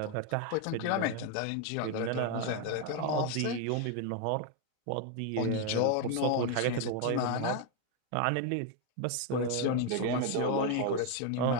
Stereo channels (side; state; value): both; different; correlation 0.01